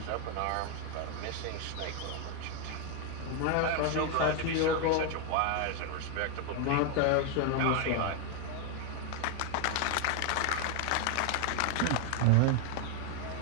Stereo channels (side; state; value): both; different; correlation 0.01